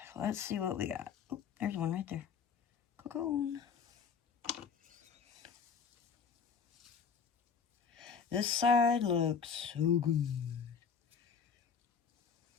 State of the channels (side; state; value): right; quieter; 6.3 dB